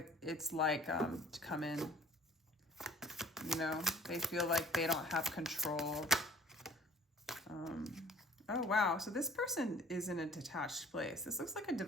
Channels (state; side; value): normal; both; correlation 0.51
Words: it's like to come in. You know, they feel like they don't have control. Oh, wow. So this person is in a detached place. This looks like a